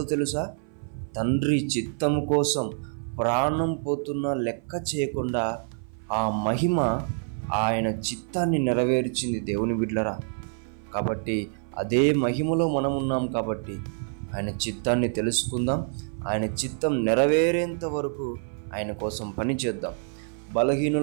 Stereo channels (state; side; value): silent; left; 56 dB below the other